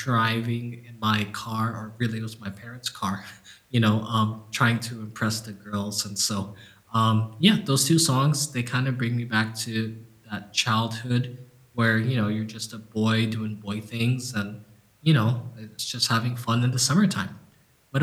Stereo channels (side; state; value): both; identical; correlation 1.00